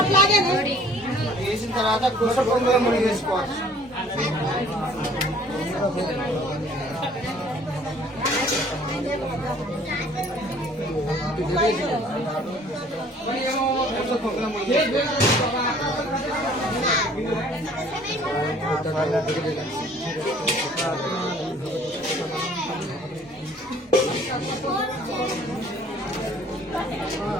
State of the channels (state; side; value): normal; both; correlation 0.54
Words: వేసిన తర్వాత కుస పొంగుల ముడి వేసుకోవాలి. కుస పొంగుల ముడి